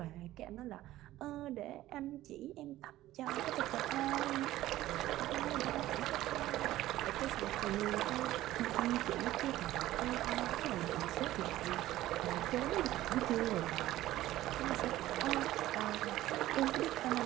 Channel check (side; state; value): left; quieter; 15.2 dB